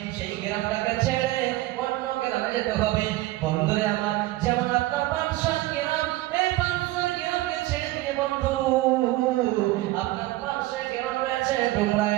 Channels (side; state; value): left; quieter; 17.8 dB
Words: সেই গ্রামটাকে ছেড়ে অন্য গ্রামে যেতে হবে। বন্ধুরে আমার, যেমন আপনার 500 গ্রাম, এই 500 গ্রামকে ছেড়ে দিয়ে বন্ধু আপনার পাশে গ্রাম রয়েছে ডোমরা